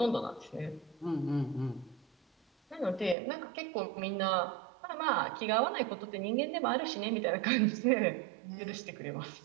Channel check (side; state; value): left; drops out; at 3.2 s